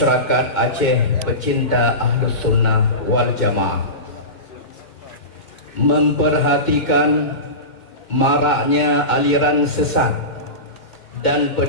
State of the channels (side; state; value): right; late; 2.1 ms